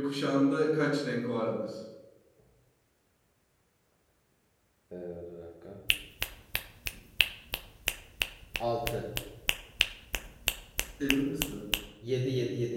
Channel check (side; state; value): both; identical; correlation 1.00